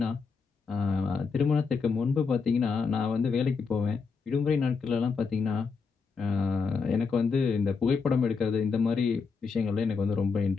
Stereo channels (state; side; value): quieter; right; 5.1 dB